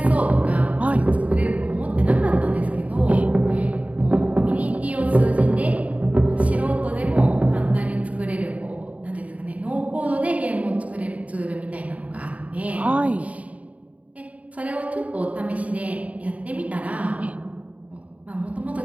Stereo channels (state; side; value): late; left; 0.068 ms